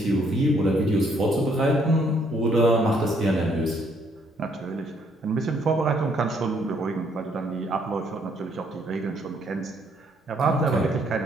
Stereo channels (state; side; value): normal; both; correlation 0.68